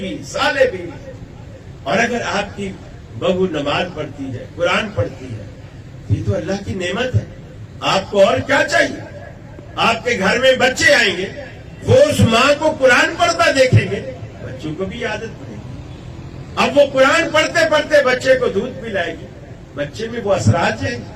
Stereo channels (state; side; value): identical; both; correlation 1.00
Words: صالح بیوی. اور اگر آپ کی بہو نماز پڑھتی ہے، قرآن پڑھتی ہے، یہ تو اللہ کی نعمت ہے. آپ کو اور کیا چاہیے؟ آپ کے گھر میں بچے آئیں گے، وہ اس ماں کو قرآن پڑھتا دیکھیں گے، بچوں کو بھی عادت پڑے گی. اب وہ قرآن پڑھتے پڑھتے بچے کو دودھ پلائے گی، بچے میں وہ اثرات جائیں گے.